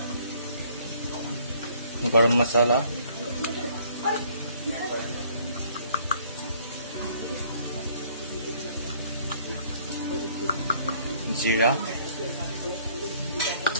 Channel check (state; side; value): inverted; both; correlation -0.60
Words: গৰম মছলা, জিৰা।